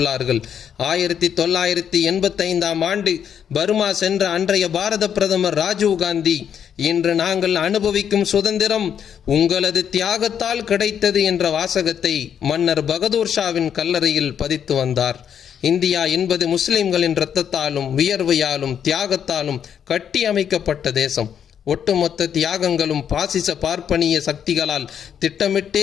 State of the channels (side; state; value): right; quieter; 8.5 dB